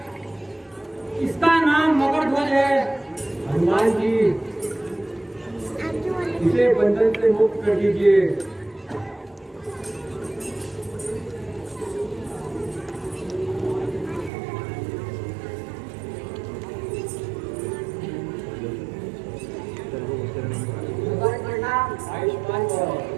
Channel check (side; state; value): left; drops out; at 14.3 s